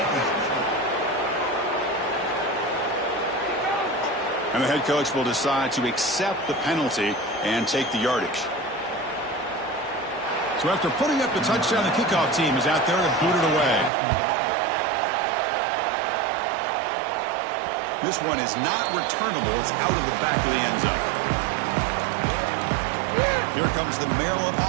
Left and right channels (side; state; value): left; drops out; at 13.9 s